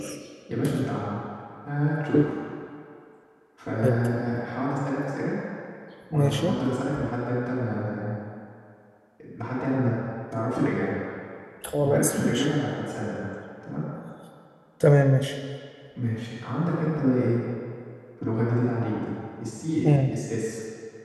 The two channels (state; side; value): identical; both; correlation 1.00